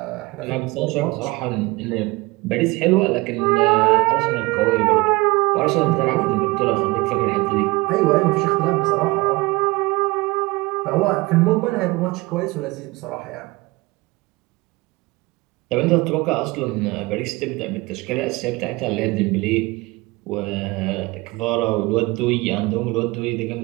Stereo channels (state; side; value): quieter; left; 22.9 dB